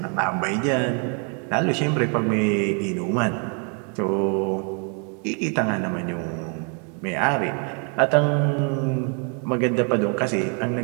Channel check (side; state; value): left; quieter; 39.8 dB